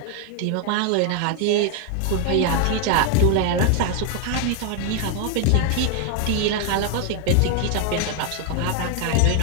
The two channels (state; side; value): different; both; correlation 0.01